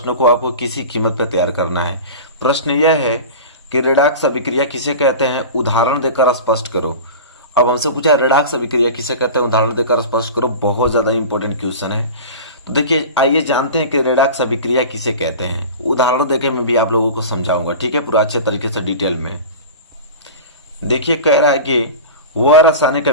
को आपको किसी कीमत पे तैयार करना है। प्रश्न यह है कि रेडॉक्स अभिक्रिया किसे कहते हैं, उदाहरण देकर स्पष्ट करो। अब हमसे पूछा है रेडॉक्स अभिक्रिया किसे कहते हैं, उदाहरण देकर स्पष्ट करो। बहुत ज्यादा इंपॉर्टेंट क्वेश्चन है। तो देखिए आइए जानते हैं कि रेडॉक्स अभिक्रिया किसे कहते हैं। उदाहरण देकर मैं भी आप लोगों को समझाऊंगा, ठीक है, पूरा अच्छे तरीके से डिटेल में। देखिए कह रहा है कि वह रासायनिक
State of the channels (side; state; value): both; inverted; correlation -0.33